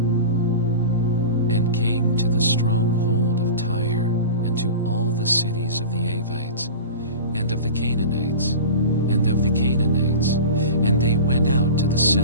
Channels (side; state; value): both; inverted; correlation -0.33